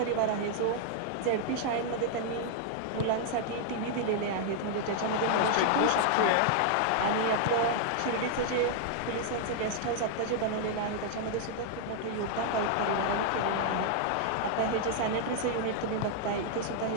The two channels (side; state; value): both; different; correlation -0.01